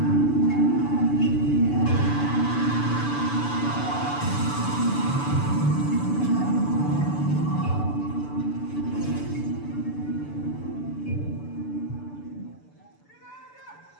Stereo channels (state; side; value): late; right; 6.9 ms